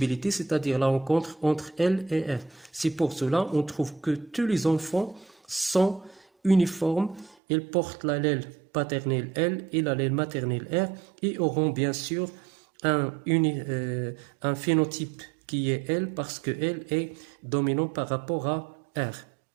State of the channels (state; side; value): drops out; left; at 7.4 s